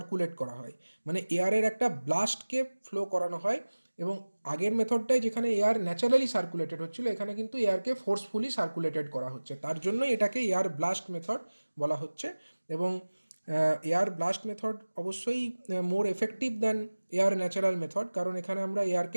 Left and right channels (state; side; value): inverted; both; correlation -1.00